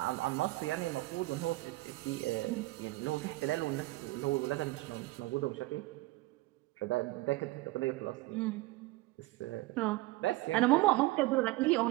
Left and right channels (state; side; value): quieter; left; 20.1 dB